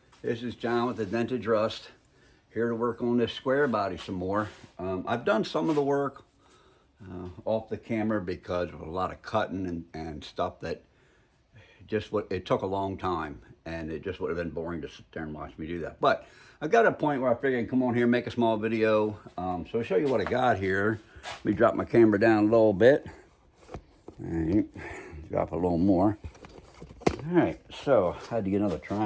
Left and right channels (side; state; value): both; identical; correlation 1.00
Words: this is John with the Vintage Rust, here to work on this square body some more. I've done some of the work off the camera because of a lot of cutting and stuff that it took a long time, and it just would have been boring to sit there and watch me do that. But I got a point where I figured I'd come on here and make a small video. So I'll show you what I got here. Let me drop my camera down a little bit. All right, drop a little more. All right, so I had to get another